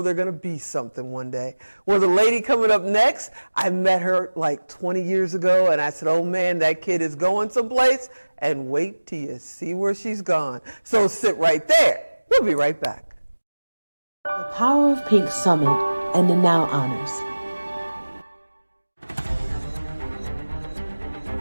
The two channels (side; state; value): both; inverted; correlation -1.00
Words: they're going to be something one day. Well, the lady coming up next, I met her like 20 years ago, and I said, oh man, that kid is going someplace, and wait till you see where she's gone. So sit right there. We'll be right back. The Power of Pink Summit and the Now Honors.